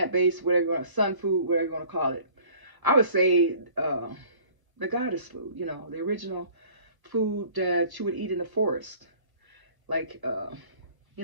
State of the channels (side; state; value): left; late; 1.0 ms